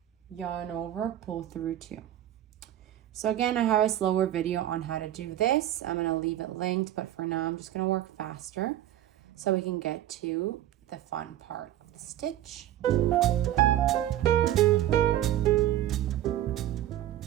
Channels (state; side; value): quieter; left; 12.6 dB